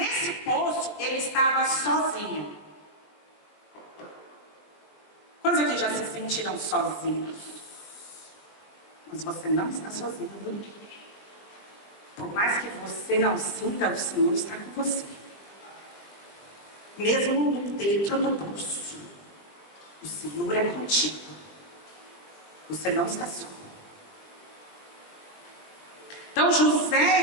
poço ele estava sozinho. Quantos aqui já se sentiram sozinhos? Mas você não está sozinho, viu? Por mais que você não sinta, o Senhor está com você. Mesmo dentro do poço, o Senhor é contigo. Você não está só. Então José,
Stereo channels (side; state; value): right; late; 20 ms